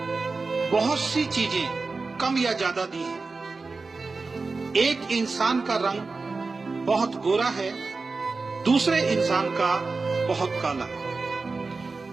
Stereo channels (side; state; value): left; quieter; 4.0 dB